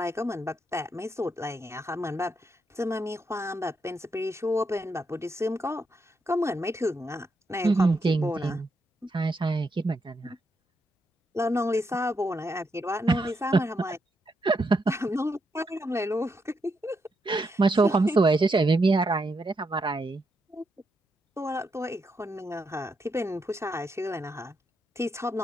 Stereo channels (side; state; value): both; normal; correlation 0.81